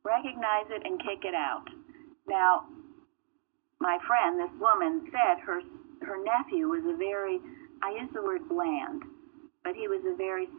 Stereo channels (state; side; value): silent; left; digital silence